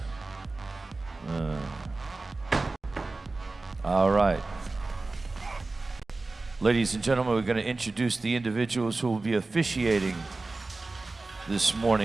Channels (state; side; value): quieter; left; 3.4 dB